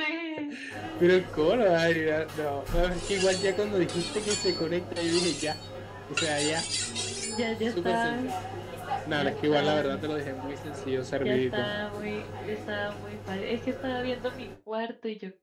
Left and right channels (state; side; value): identical; both; correlation 1.00